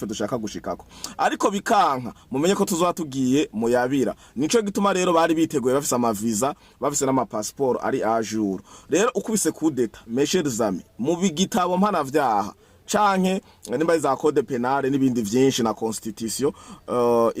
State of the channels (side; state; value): both; identical; correlation 1.00